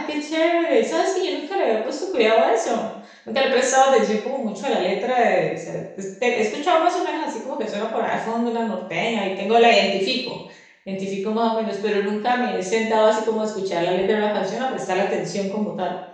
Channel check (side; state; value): both; identical; correlation 1.00